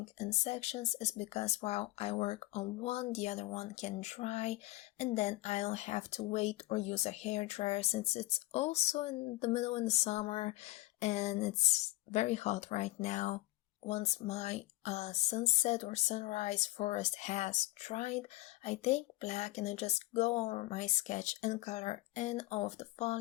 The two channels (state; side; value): quieter; right; 18.8 dB